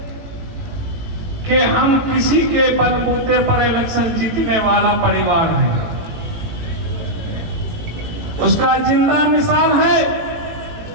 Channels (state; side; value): late; left; 18 ms